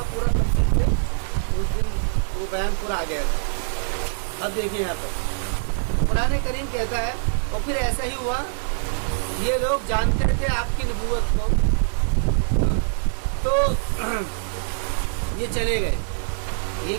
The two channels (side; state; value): left; silent; 56 dB below the other